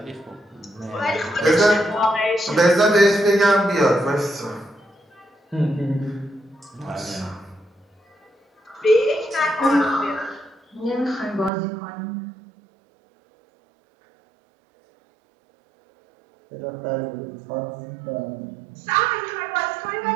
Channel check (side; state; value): left; drops out; at 11.5 s